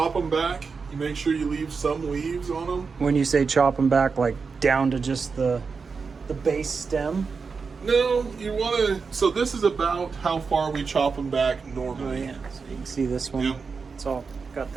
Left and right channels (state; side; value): quieter; left; 5.1 dB